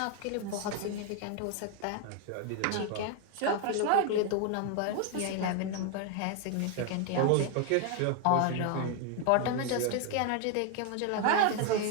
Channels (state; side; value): different; both; correlation 0.01